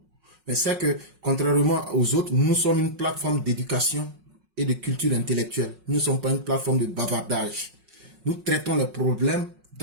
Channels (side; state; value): left; late; 5.4 ms